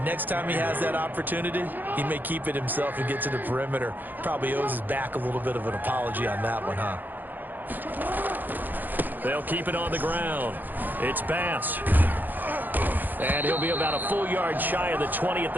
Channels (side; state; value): left; late; 0.086 ms